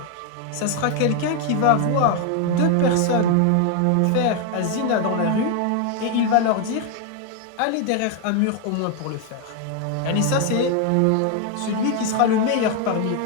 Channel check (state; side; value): different; both; correlation 0.01